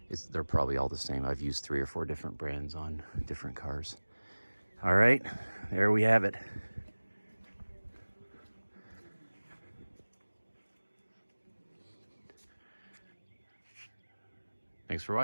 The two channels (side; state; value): both; inverted; correlation -1.00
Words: they're probably all the same. I've used 3 or 4 different brands on different cars. All right, there we have it. Thanks for